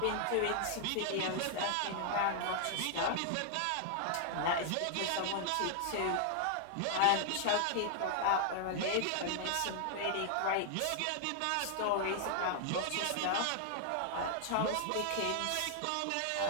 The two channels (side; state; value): both; different; correlation 0.00